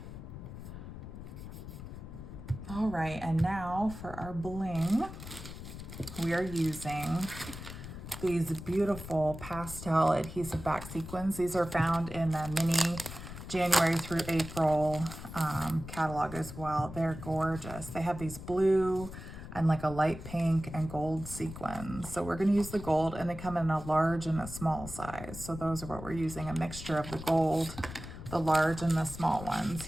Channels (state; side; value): noise; left; rumble, 11 dB below the sound